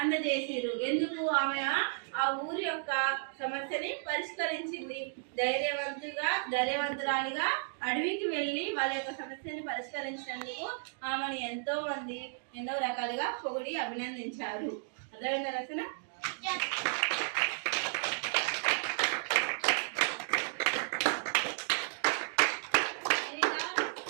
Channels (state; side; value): silent; left; digital silence